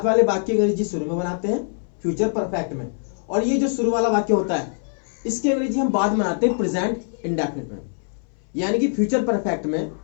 वाले वाक्य की अंग्रेजी शुरू में बनाते हैं फ्यूचर परफेक्ट में, और ये जो शुरू वाला वाक्य होता है इसकी अंग्रेजी हम बाद में बनाते हैं प्रेजेंट इंडेफिनिट में। यानी कि फ्यूचर परफेक्ट में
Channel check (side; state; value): right; silent; 61 dB below the other